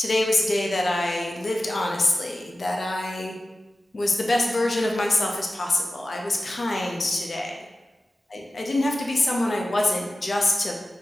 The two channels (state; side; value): normal; both; correlation 0.95